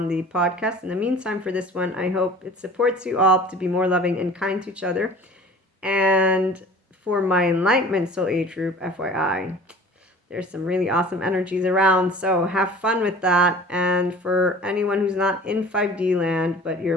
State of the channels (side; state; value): both; normal; correlation 0.44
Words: the podcast. In the meantime, for this one, I hope it supports you all to be more loving and kind to each other. And for my Enlightenment Soul Age group, FYI, there's some really awesome energies around, so have fun with that. And for anyone who's not in 5D land, but you're